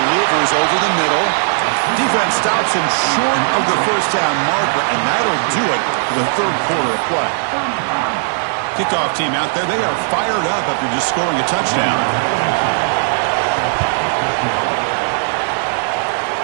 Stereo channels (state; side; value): silent; left; digital silence